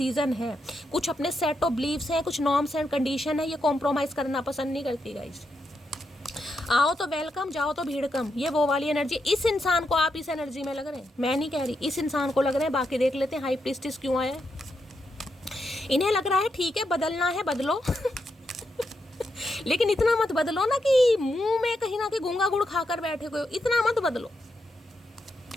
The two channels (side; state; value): both; normal; correlation 0.83